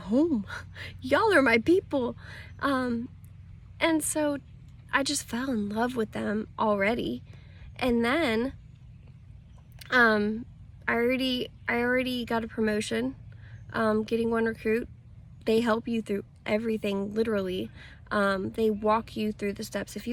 Y'all are my people. And so I just fell in love with them already. And then I already got a promotion, getting one recruit. They help you through everything, literally. They walk you through the steps. If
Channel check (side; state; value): both; identical; correlation 1.00